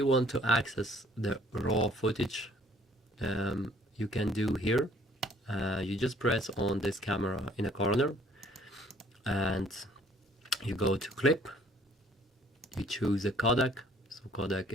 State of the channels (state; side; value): normal; both; correlation 0.58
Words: want to access the raw footage, you can do here. You just press on this camera in a corner and you go to clip, you choose a codec. So codec